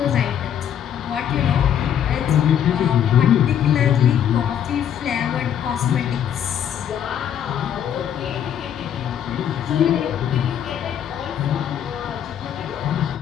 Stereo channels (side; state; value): right; quieter; 9.4 dB